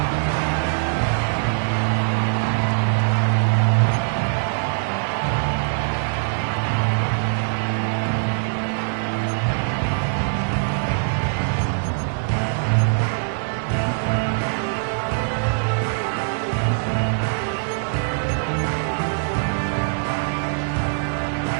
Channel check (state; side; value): silent; left; digital silence